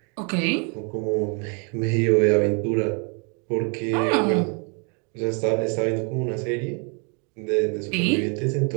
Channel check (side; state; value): left; quieter; 36.9 dB